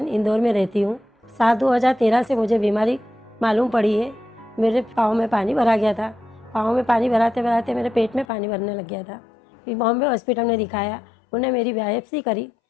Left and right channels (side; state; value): right; drops out; at 8.2 s